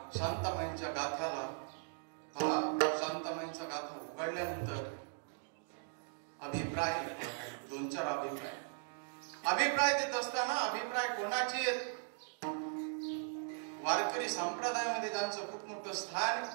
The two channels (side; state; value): left; silent; 52 dB below the other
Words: शांताबाईंच्या गाथ्याला शांताबाईंचा गाथा उघडल्यानंतर अभिप्राय 2-4 अभिप्राय देत असताना, अभिप्राय कोणाचे आहेत? वारकरी संप्रदायामध्ये ज्यांचं खूप मोठं स्थान,